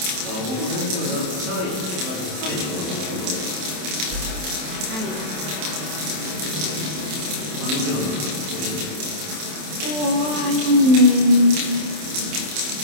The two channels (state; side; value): late; left; 27 ms